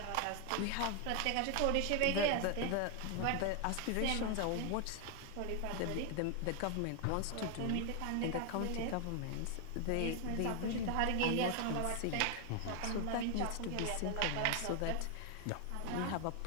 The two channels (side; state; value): both; different; correlation 0.00